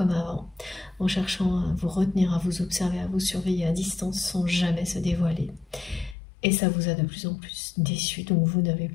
avant, en cherchant à vous retenir, à vous observer, à vous surveiller à distance sans jamais se dévoiler. Et ça vous a de plus en plus déçu, donc vous n'avez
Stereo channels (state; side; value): drops out; right; at 6.2 s